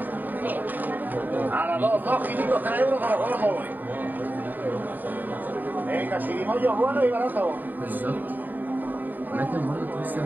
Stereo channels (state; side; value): late; left; 0.088 ms